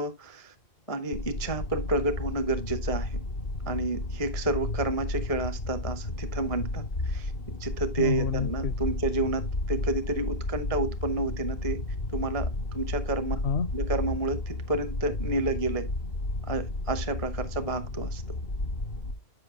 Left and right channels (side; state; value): right; late; 1.7 ms